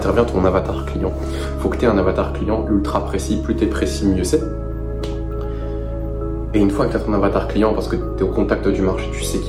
ton avatar client. Faut que tu aies un avatar client ultra précis. Plus tu es précis, mieux c'est. Et une fois que tu as ton avatar client, parce que tu es au contact du marché, tu sais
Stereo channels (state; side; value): identical; both; correlation 1.00